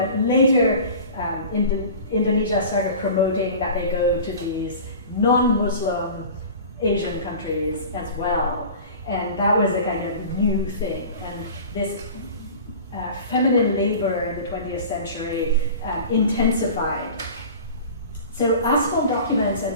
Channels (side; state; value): both; inverted; correlation -0.39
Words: later Indonesia started promoting that they go to these non-Muslim Asian countries as well. And that was a kind of new thing. And this feminine labor in the 20th century intensified. So asphalt documents